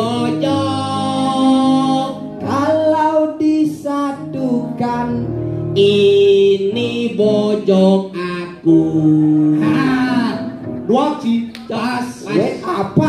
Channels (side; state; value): both; identical; correlation 1.00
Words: Kalau disatukan ini bojong aku. Dua Ci. Pas.